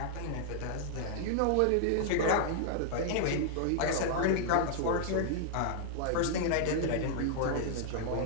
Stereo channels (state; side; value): different; both; correlation -0.01